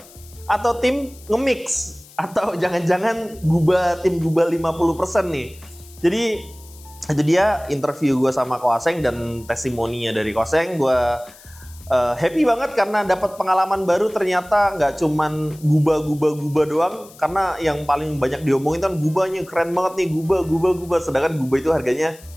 atau tim nge-mix? Atau jangan-jangan tim gubah 50% nih? Jadi itu dia interview gue sama Koseng dan testimoninya dari Koseng. Gue happy banget karena dapat pengalaman baru. Ternyata nggak cuman gubah doang. Karena yang paling banyak diomongin kan gubahnya keren banget nih, gubah. Sedangkan gubah itu harganya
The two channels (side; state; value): left; noise; hiss, 23 dB below the sound